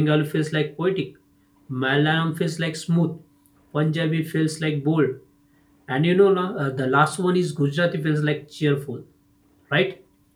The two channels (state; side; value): identical; both; correlation 1.00